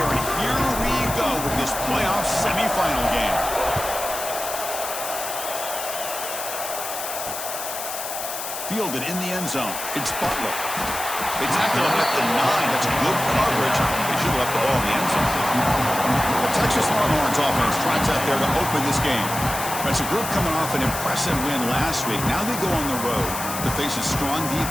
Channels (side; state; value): left; noise; hiss, 6 dB below the sound